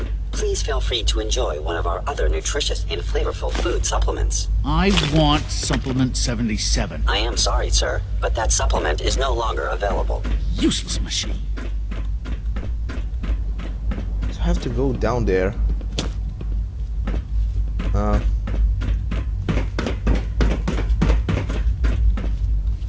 please feel free to enjoy one of our other nutritious and flavorful food supplements. I want Supplement 77. I am sorry, sir, but that supplement is no longer available. Useless machine. I have to go down there.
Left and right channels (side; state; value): both; identical; correlation 1.00